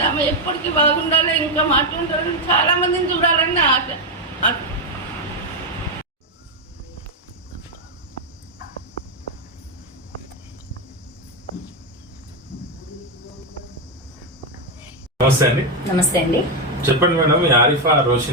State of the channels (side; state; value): both; normal; correlation 0.05